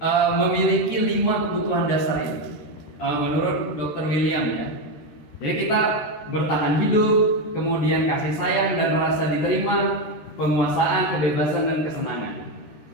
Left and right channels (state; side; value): late; right; 13 ms